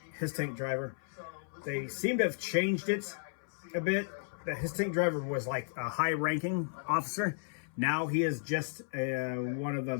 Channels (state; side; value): silent; right; 55 dB below the other